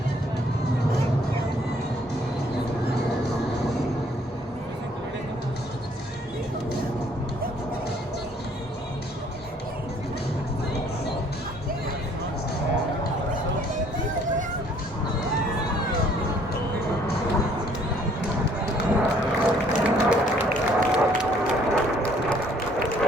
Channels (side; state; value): both; normal; correlation 0.61